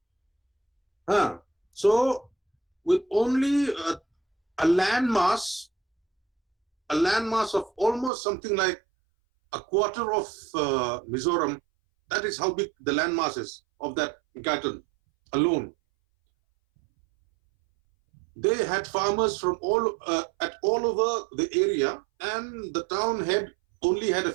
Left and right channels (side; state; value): left; drops out; at 8.1 s